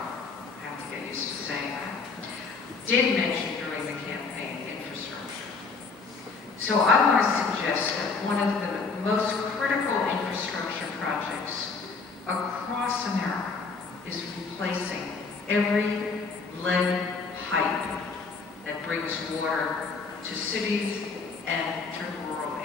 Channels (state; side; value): quieter; right; 4.5 dB